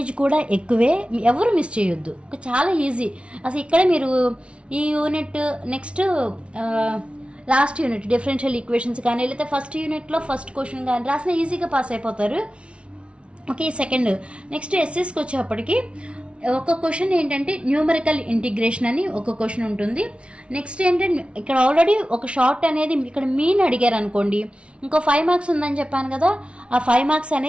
కూడా ఎక్కువే ఎవరు మిస్ చేయొద్దు చాలా ఈజీ అసలు ఇక్కడ మీరు ఈ unit next last unit differential equations కానీ లేకపోతే ఫస్ట్ యూనిట్లో ఫస్ట్ క్వశ్చన్ కానీ రాసిన ఈజీగా పాస్ అయిపోతారు ఓకే సెకండ్ నెక్స్ట్ ఎస్ఎస్కి వచ్చేప్పటికి ఒక క్వశ్చన్ ఏంటంటే న్యూమరికల్ ఇంటిగ్రేషన్ అని ఒక క్వశ్చన్ ఉంటుంది నెక్స్ట్ ఏంటంటే ఇక్కడ ఆల్రెడీ ఒక షార్ట్ అనేది ఇక్కడ మీన్ అడిగారు అనుకోండి ఇంకో 5 మార్క్స్ ఉందని చెప్పాను కదా ఆ 5 మార్క్స్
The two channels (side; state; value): left; late; 0.060 ms